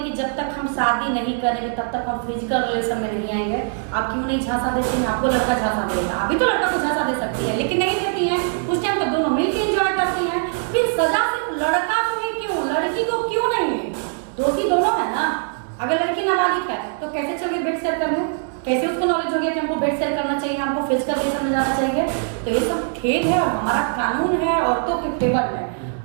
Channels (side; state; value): left; silent; 64 dB below the other